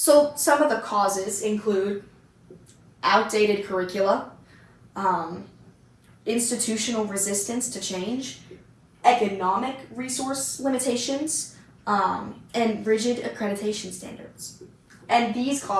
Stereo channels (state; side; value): identical; both; correlation 1.00